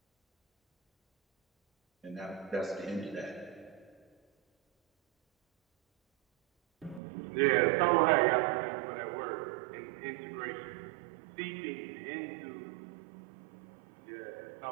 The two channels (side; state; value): left; drops out; at 7.0 s